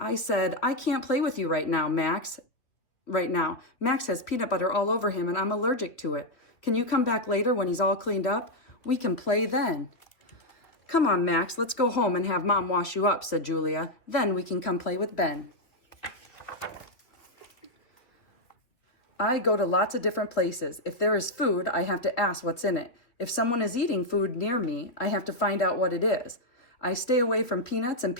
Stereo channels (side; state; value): right; late; 2.9 ms